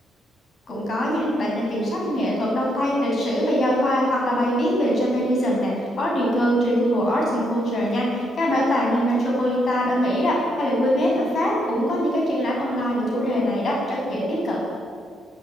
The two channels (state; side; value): normal; both; correlation 0.76